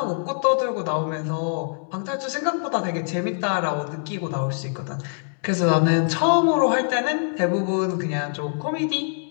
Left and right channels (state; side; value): silent; right; digital silence